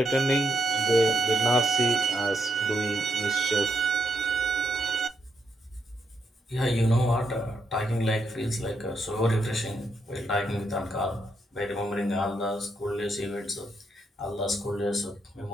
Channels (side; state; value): both; normal; correlation 0.78